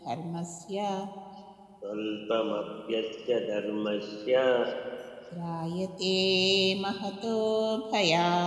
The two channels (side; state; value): both; identical; correlation 1.00